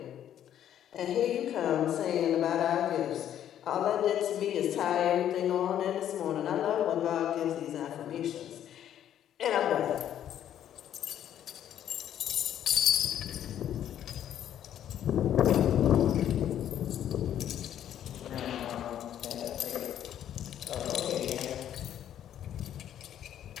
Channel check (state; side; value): quieter; right; 10.6 dB